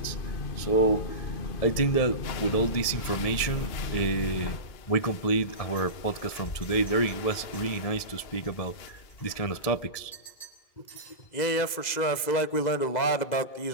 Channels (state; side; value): late; right; 2.0 ms